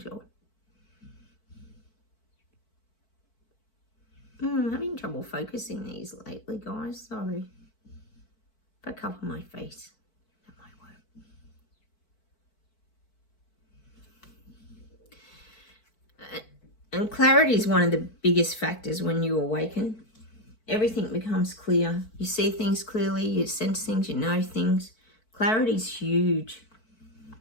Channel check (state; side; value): late; right; 4.5 ms